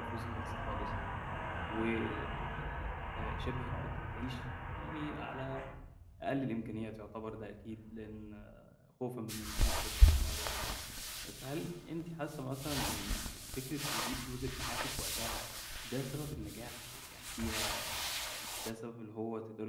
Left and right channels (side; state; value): both; identical; correlation 1.00